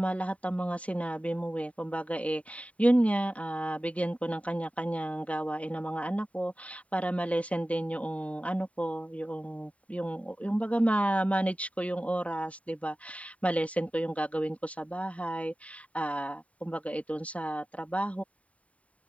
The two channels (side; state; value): right; late; 0.067 ms